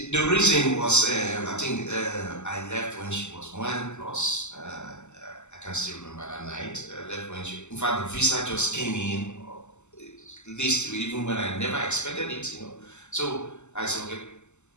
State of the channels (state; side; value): late; right; 0.83 ms